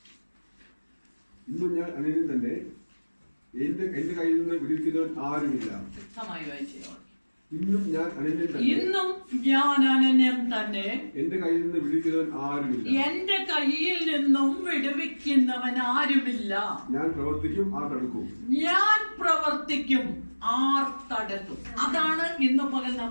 ഇന്നും ഞാൻ അനന്യൻ തന്നെ, എന്റെ കയ്യിൽ നിന്ന് വിടുവിക്കുന്നവൻ ആരുമില്ല. വ്യക്തമായി വായിച്ചോ. ഇന്നും ഞാൻ അനന്യൻ തന്നെ, ഇന്നും ഞാൻ അനന്യൻ തന്നെ, എന്റെ കയ്യിൽ നിന്ന് വിടുവിക്കുന്നവൻ ആരുമില്ല. എന്റെ കയ്യിൽ നിന്നും വിടുവിക്കുന്നവൻ ആരുമില്ല. ഞാൻ പ്രവർത്തിക്കും, ആർ തടുക്കും. ഞാൻ പ്രവർത്തിക്കും, ആർ തടുക്കും. അതാണ് ഇന്ന് പകൽ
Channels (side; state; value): both; inverted; correlation -1.00